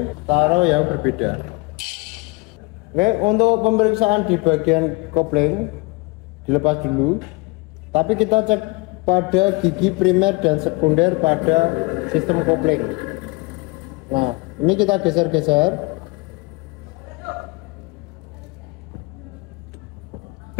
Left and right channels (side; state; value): right; quieter; 26.4 dB